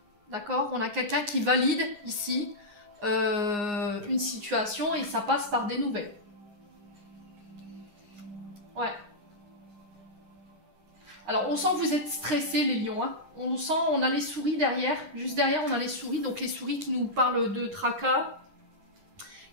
D'accord, on a quelqu'un qui valide ici une situation et ça passe par des nouvelles. Ouais. Alors on sent que vous êtes stressés les lions. On sent, on a les souris derrière. Juste derrière on a les souris. Donc les souris qui nous parlent de tracas,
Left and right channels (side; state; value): left; late; 9.7 ms